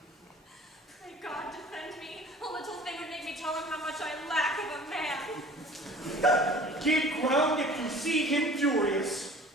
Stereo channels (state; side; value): normal; both; correlation 0.46